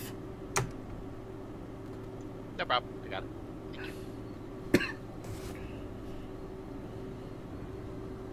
No problem. I got it. Thank you.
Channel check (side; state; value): both; identical; correlation 1.00